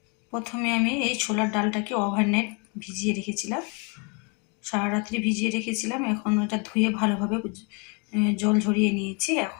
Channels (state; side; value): quieter; right; 33.7 dB